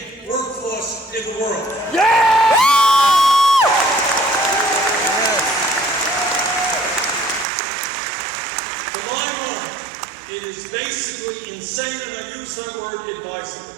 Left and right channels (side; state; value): left; drops out; at 7.5 s